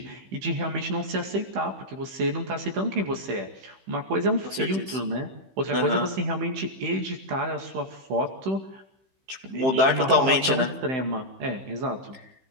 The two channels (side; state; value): left; late; 15 ms